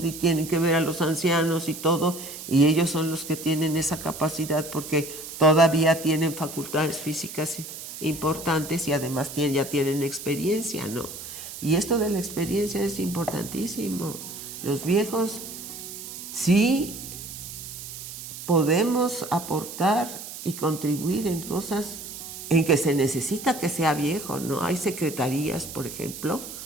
y tienen que ver a los ancianos y todo, y ellos son los que tienen esa capacidad porque todavía tienen facultades físicas importantes y además ya tienen experiencia, ¿no? Y esto de la experiencia es importantísimo. Los viejos sí podemos aportar y contribuir en cosas en que se necesita que sea viejo, ¿no? Hay secretarías, por ejemplo,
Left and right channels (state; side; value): noise; right; hiss, 11 dB below the sound